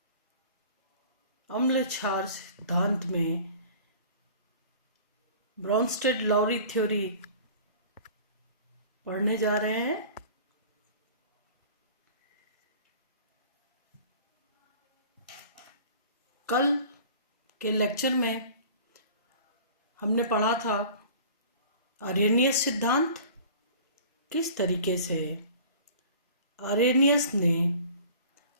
अम्ल क्षार सिद्धांत में ब्रॉन्स्टेड-लॉरी थ्योरी पढ़ने जा रहे हैं। कल के लेक्चर में हमने पढ़ा था आरेनियस सिद्धांत। किस तरीके से आरेनियस ने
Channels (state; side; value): inverted; both; correlation -0.45